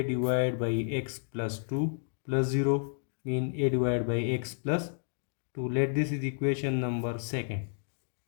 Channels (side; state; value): right; silent; digital silence